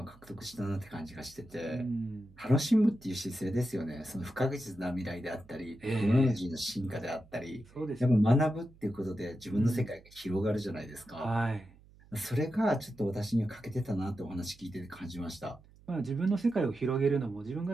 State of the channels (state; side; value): noise; right; hum, 25 dB below the sound